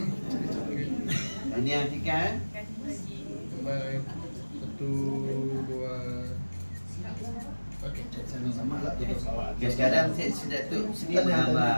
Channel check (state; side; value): inverted; both; correlation -1.00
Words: Ini artikan. Baik. 1, 2. Okey. Okay, sekarang saya sedap tu sini